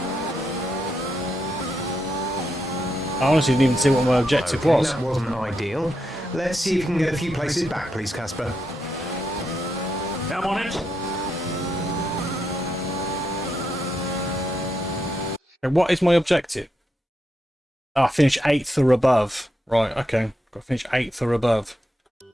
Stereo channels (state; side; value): normal; both; correlation 0.82